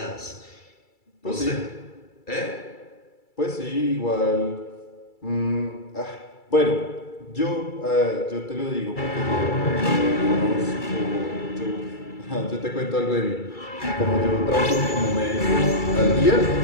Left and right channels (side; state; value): right; late; 2.3 ms